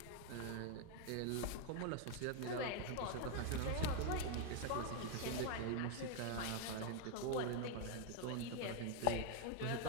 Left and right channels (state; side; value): different; both; correlation 0.01